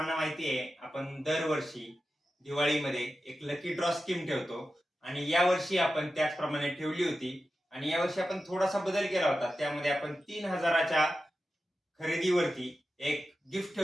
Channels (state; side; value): normal; both; correlation 0.92